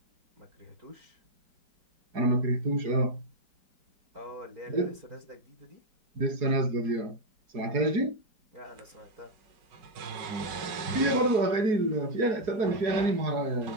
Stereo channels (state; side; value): late; left; 4.8 ms